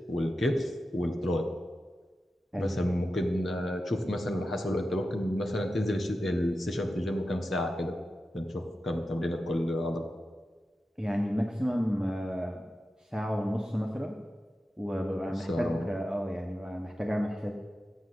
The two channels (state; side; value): normal; both; correlation 0.91